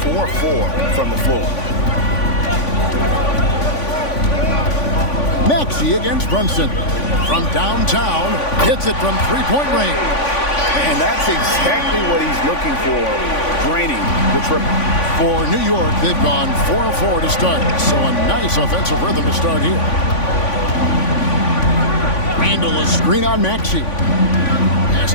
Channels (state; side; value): late; right; 3.5 ms